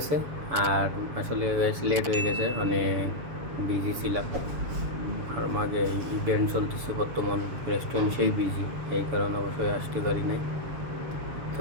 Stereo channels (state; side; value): late; left; 7.1 ms